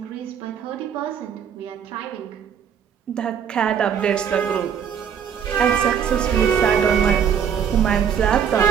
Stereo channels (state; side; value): quieter; left; 8.0 dB